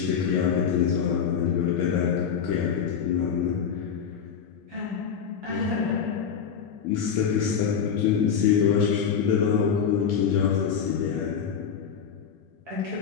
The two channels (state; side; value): quieter; right; 7.2 dB